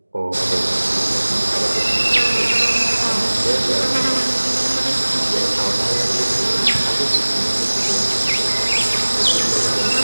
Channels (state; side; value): inverted; both; correlation -1.00